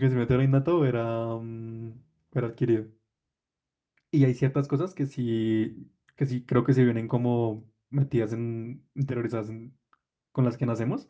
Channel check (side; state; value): both; identical; correlation 1.00